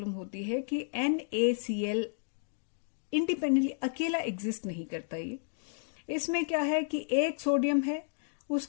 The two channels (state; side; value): silent; right; digital silence